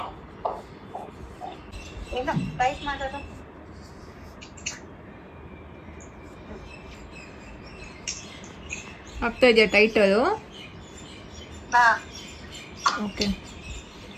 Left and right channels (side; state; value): both; identical; correlation 1.00